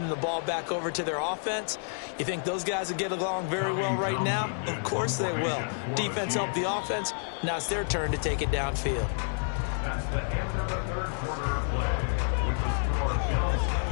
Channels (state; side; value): silent; right; 58 dB below the other